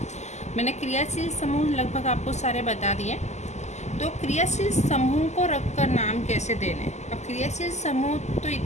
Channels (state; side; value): late; right; 0.33 ms